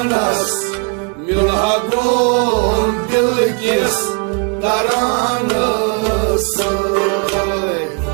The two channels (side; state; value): left; quieter; 36.2 dB